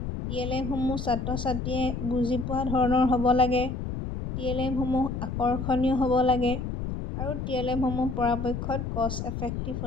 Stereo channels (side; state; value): left; noise; rumble, 4 dB below the sound